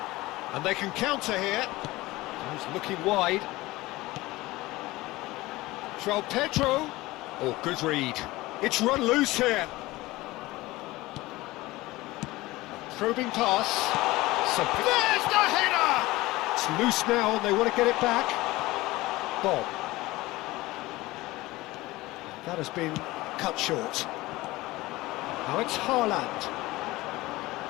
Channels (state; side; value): quieter; right; 19.4 dB